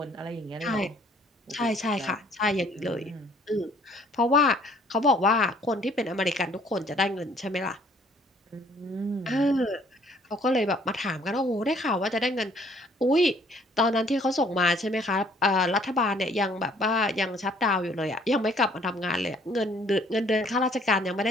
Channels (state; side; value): normal; both; correlation 0.60